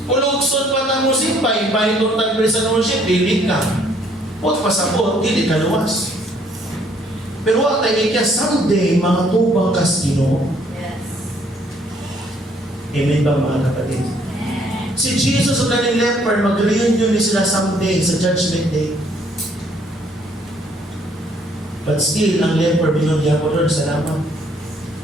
Pulugsod pa na mo simpay, itong tagpili sa worship, dili ka. Put pasapot, dili ka luwas. Pero wag tayo kaya someday, mga tubang kastino. Yes. Amen ba mga kapatid? Si Jesus at kaning leper, mag-reunion ni sila someday sa Judgment Day. But still, ang leper, binunyan ko, Lord, salamat.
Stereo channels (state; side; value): normal; both; correlation 0.64